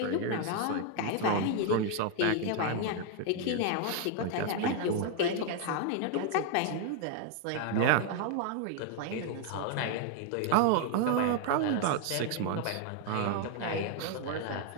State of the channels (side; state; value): both; different; correlation 0.01